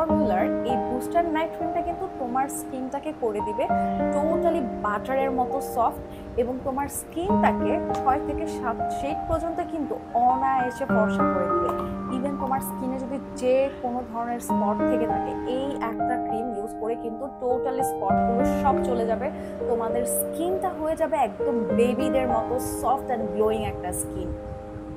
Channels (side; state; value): both; identical; correlation 1.00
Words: এই বুস্টার নাইট ক্রিমটা কিন্তু তোমার স্কিনটাকে করে দিবে টোটালি বাটারের মতো সফট, এবং তোমার স্কিনটাকে 6 থেকে 7 শেড পর্যন্ত কিন্তু অনায়াসে ফর্সা করে দিবে। ইভেন তোমার স্কিনে যদি যে কোনো ধরনের স্পট থেকে থাকে, এই একটা ক্রিম ইউজ করে কিন্তু টোটালি স্পটগুলো সব চলে যাবে। তোমাদের স্কিনটা হয়ে যাবে একদম বেবিদের মতো সফট অ্যান্ড গ্লোয়িং একটা স্কিন।